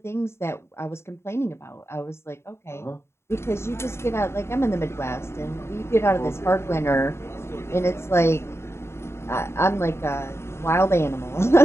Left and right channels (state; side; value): late; right; 0.13 ms